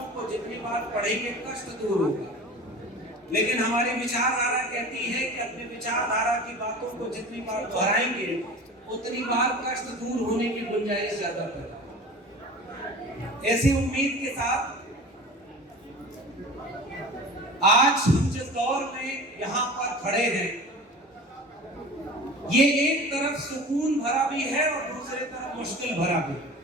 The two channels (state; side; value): normal; both; correlation 0.38